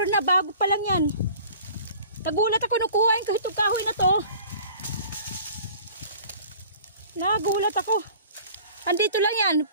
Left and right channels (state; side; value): inverted; both; correlation -0.47